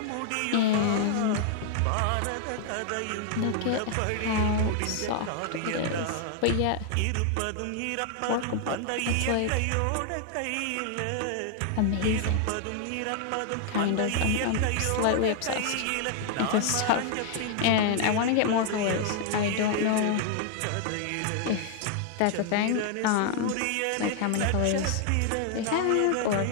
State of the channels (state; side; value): different; both; correlation 0.00